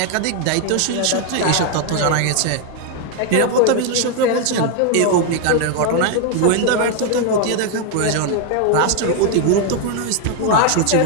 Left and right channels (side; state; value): both; different; correlation 0.01